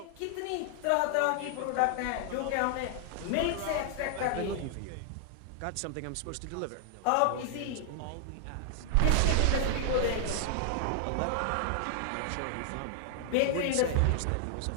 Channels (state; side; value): different; both; correlation 0.00